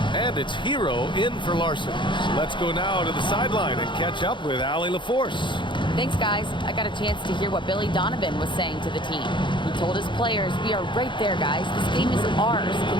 And it's Hero in for Larson. Let's go now to the sideline and catch up with Allie LaForce. Thanks, guys. I got a chance to hear what Billy Donovan was saying to the team. He told his players, we are right there, guys. This game is ours.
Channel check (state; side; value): late; right; 0.23 ms